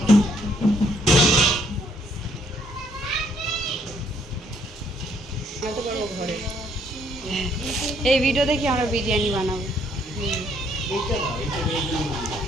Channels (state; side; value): normal; both; correlation 0.68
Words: এই ভিডিও দেখি আমরা বিরিয়ানি বানাবো।